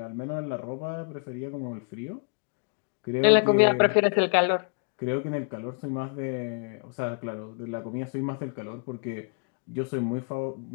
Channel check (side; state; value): right; quieter; 39.2 dB